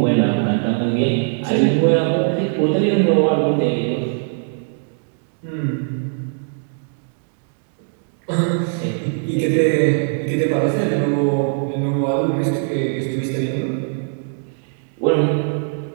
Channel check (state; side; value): silent; left; 65 dB below the other